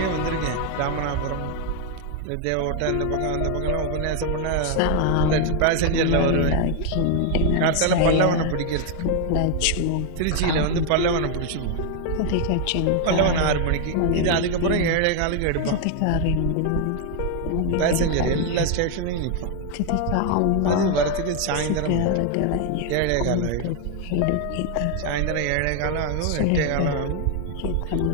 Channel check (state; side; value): different; both; correlation 0.01